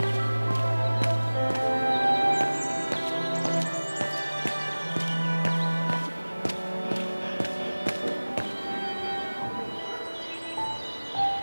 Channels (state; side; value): inverted; both; correlation -1.00